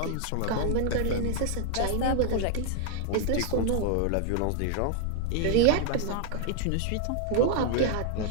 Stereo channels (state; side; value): different; both; correlation 0.00